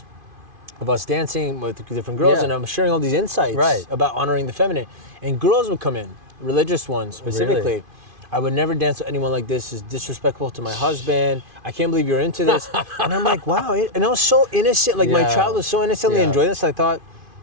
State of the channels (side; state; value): left; late; 2.5 ms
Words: of us dancing with different girls, Yeah. and I'm sharing all these insights Right. about honoring the feminine. And girls would come in, religious ones specifically. Really? I would never dance with anyone like this. It's disrespectful to my husband. I can't believe you're into this. And I'm like, wow. And I was so innocent. Like my Yeah. child was so innocently Yeah. enjoying this. I thought,